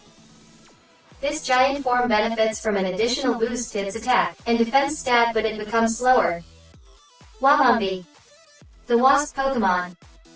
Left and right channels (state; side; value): identical; both; correlation 1.00